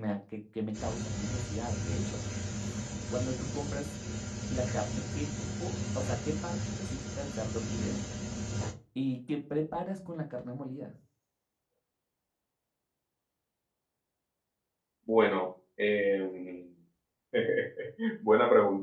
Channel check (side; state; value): both; identical; correlation 1.00